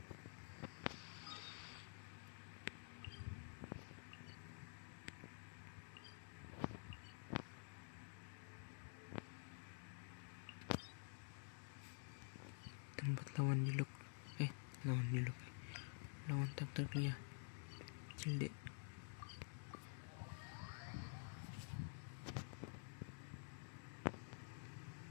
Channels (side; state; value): right; silent; digital silence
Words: Tempat lawan Niluk. Lawan Niluk. Lawan takdirnya. Cilde.